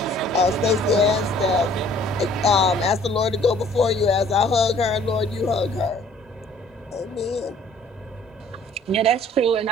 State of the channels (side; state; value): both; normal; correlation 0.56